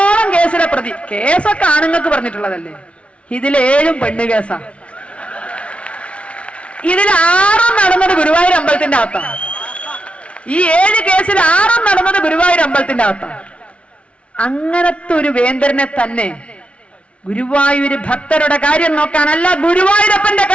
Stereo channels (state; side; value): late; right; 0.061 ms